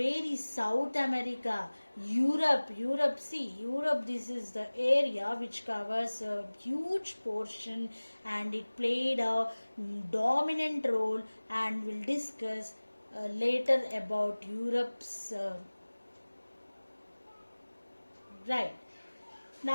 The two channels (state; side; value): inverted; both; correlation -1.00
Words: is South America? Europe, see, Europe, this is the area which covers a huge portion, and it played a dominant role, and we'll discuss later about Europe's right.